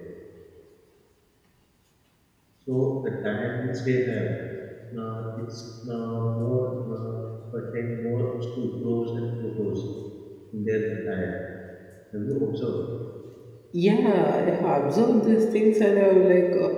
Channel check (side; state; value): both; identical; correlation 1.00